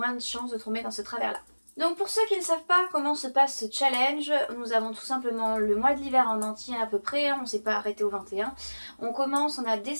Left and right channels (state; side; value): inverted; both; correlation -1.00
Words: de chances de tomber dans ce travers-là. Donc pour ceux qui ne savent pas comment se passe ce challenge, nous avons tout simplement le mois de l'hiver en entier à peu près, on ne s'est pas arrêté au 21. On commence, on a